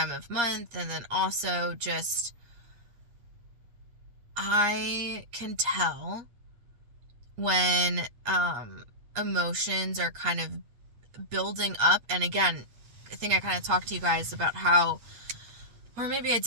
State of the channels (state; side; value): late; left; 8.5 ms